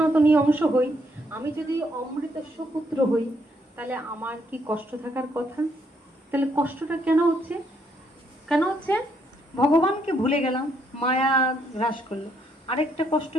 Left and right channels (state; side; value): normal; both; correlation 0.72